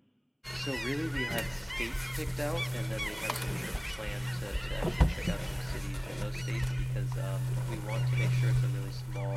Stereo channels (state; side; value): identical; both; correlation 1.00